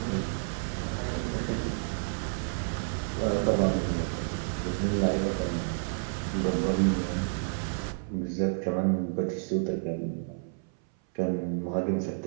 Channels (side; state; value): left; silent; 58 dB below the other